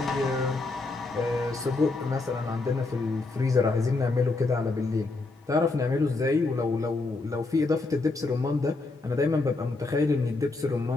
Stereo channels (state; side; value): quieter; right; 3.4 dB